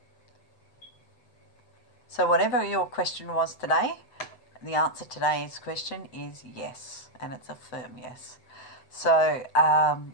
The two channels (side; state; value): right; late; 7.8 ms